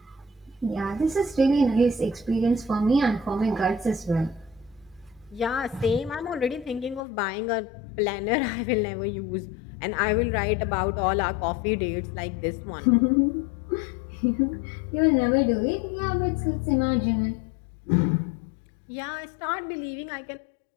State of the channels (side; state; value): right; drops out; at 7.0 s